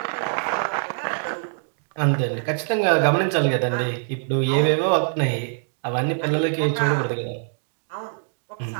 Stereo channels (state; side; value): silent; left; 63 dB below the other